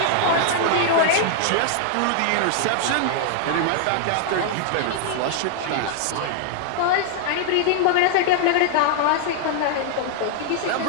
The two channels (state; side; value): different; both; correlation -0.01